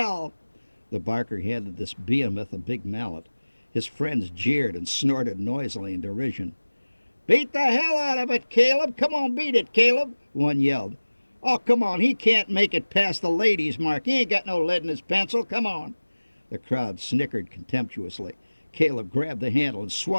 The barker handed this behemoth a big mallet. His friends jeered and snorted noisily in derision. Beat the hell out of it, Caleb. Come on, beat it, Caleb, one yelled. Oh, come on, he can't make it past the ladies' mark. He ain't got no lead in his pencil. Come on. The crowd snickered contemptuously. Caleb grabbed the handle and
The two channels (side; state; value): both; inverted; correlation -1.00